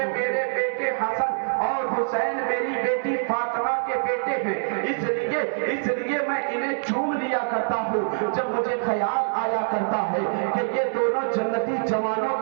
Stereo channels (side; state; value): left; silent; digital silence